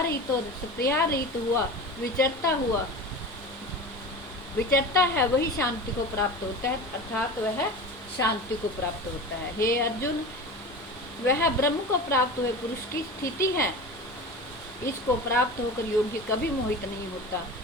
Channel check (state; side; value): normal; both; correlation 0.31